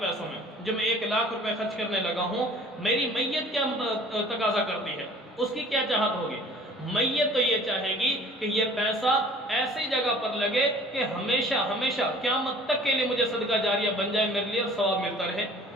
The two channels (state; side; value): normal; both; correlation 0.49